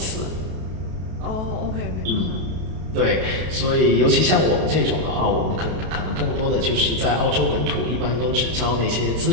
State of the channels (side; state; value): left; late; 32 ms